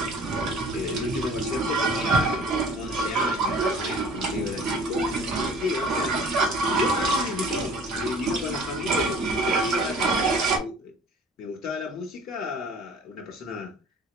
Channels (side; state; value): both; normal; correlation 0.48